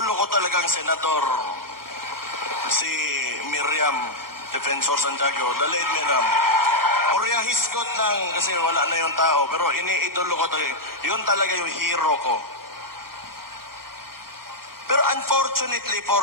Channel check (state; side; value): late; left; 0.93 ms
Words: ko talagang senador, si Miriam Defensor Santiago, the late Miriam. Orya hisgot lang kasi wala na yung tao, pero iniidolo ko talaga. Yun talaga yung hero ko. Pero unfortunately